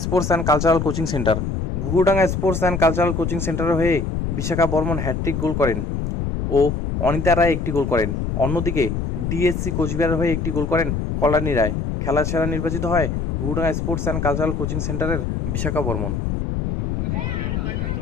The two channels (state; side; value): noise; left; rumble, 2 dB below the sound